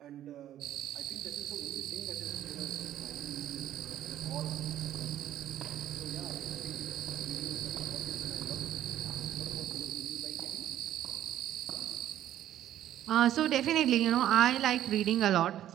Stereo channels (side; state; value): left; quieter; 12.0 dB